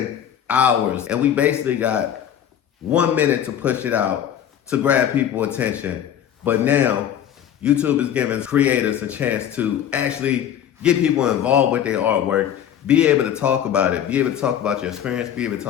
hours and we basically got 1 minute to push it out to grab people's attention. But now YouTube is giving creators a chance to actually get people involved with their artwork, be able to talk about it, be able to talk about your experience, be able to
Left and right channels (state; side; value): quieter; right; 9.9 dB